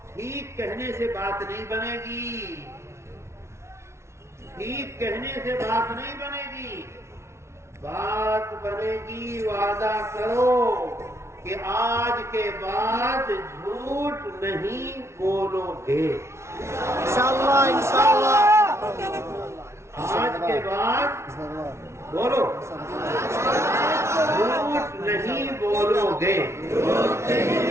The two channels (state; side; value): late; left; 0.13 ms